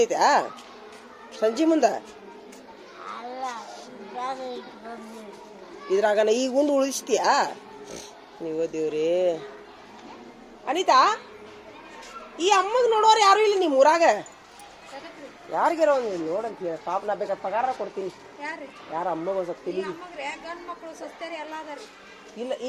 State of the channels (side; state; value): both; identical; correlation 1.00